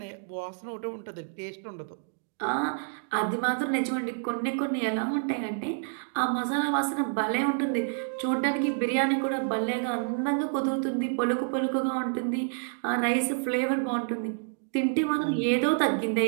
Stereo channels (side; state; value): left; silent; digital silence